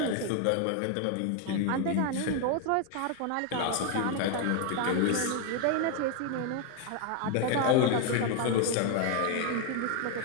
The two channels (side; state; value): both; different; correlation 0.01